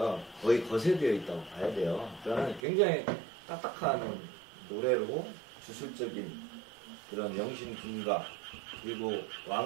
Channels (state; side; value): drops out; left; at 2.6 s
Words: 거의 거세되어 있다고 봐야 돼요. 그러니까 굉장히 딱딱한 노래로 주술적인 그런 영신 군가, 그리고